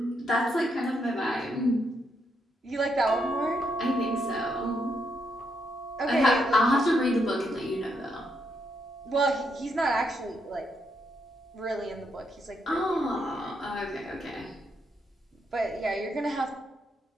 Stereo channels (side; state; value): both; normal; correlation 0.78